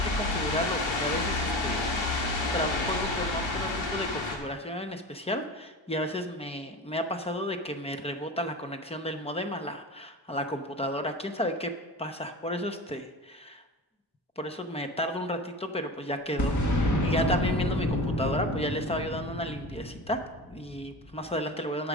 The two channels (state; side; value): normal; both; correlation 0.30